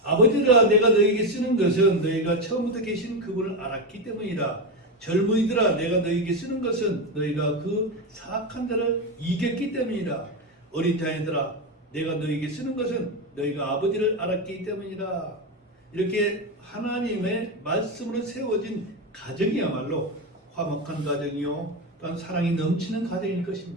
아버지들아 내가 너에게 쓰는 것은 너희가 처음부터 계신 그분을 알았기 때문이라. 젊은이들아 내가 너희에게 쓰는 것은 너희가 그 사악한 자를 이겼기 때문이라. 어린 자녀들아 내가 너희에게 쓰는 것은 너희가 아버지를 알았기 때문이라. 이렇게 하나님의 말씀으로 세워진 가정이야말로 화목한 가정이요 또한 사랑이 넘치는 가정일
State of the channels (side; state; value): both; normal; correlation 0.13